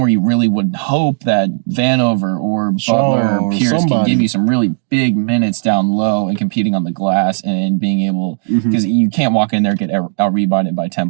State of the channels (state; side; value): silent; left; digital silence